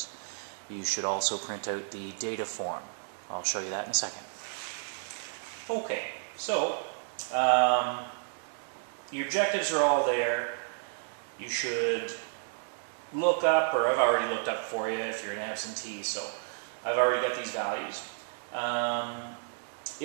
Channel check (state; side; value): silent; left; digital silence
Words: You should also print out the data form. I'll show you that in a second. Okay, so your objectives are all there. You should look up, or I've already looked up for you if you're an absentee, so I've already got these values.